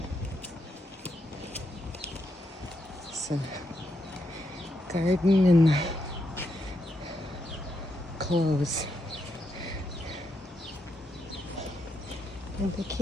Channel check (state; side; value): normal; both; correlation 0.81